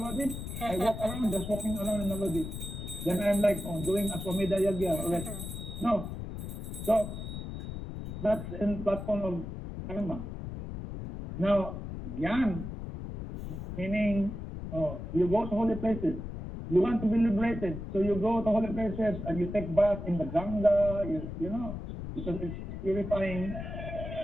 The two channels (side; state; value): left; noise; rumble, 7 dB below the sound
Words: I walk around, just walking around in Navadip. Then I'm like, oh, doing Aswamedha Yagya already. No. So, that's in platform of karma. Now, Gyan, meaning, you go to holy places. You want to be liberated, so you go to holy places and you take bath in the Ganga, you know, because it's purifying.